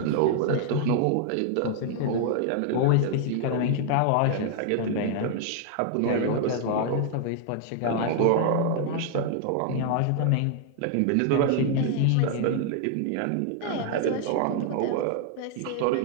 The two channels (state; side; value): different; both; correlation 0.00